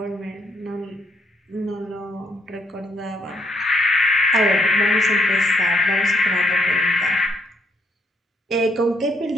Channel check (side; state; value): both; normal; correlation 0.72